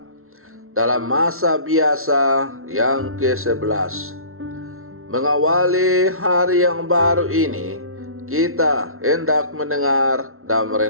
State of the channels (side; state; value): left; late; 0.62 ms